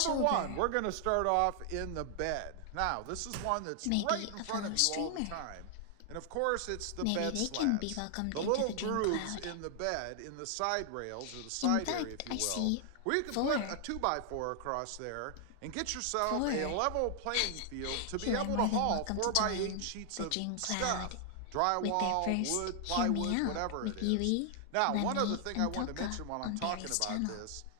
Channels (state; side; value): different; both; correlation 0.00